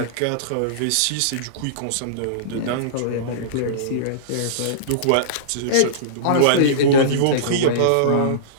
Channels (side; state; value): both; different; correlation -0.03